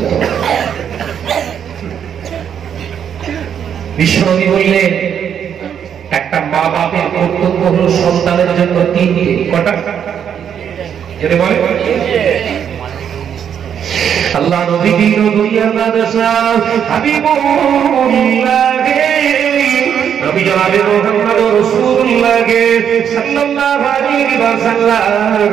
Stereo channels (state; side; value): quieter; left; 8.4 dB